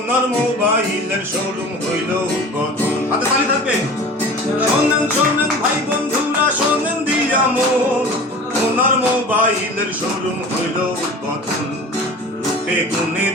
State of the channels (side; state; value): both; normal; correlation 0.39